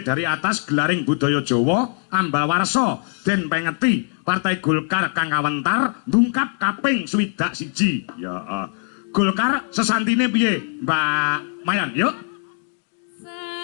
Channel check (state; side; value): silent; right; 58 dB below the other